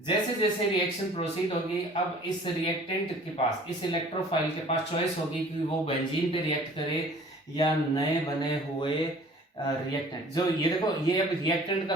जैसे रिएक्शन प्रोसीड होगी अब इस रिएक्टेंट के पास, इस इलेक्ट्रोफाइल के पास चॉइस होगी कि वो बेंजीन पे रिएक्ट करे या नए बने हुए रिएक्टेंट। जो ये देखो ये अब रिएक्टेंट का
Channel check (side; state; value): both; normal; correlation 0.50